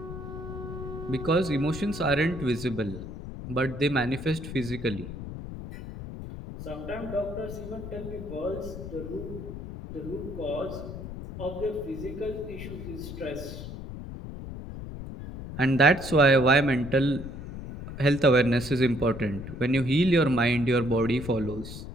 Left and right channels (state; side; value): noise; left; rumble, 9 dB below the sound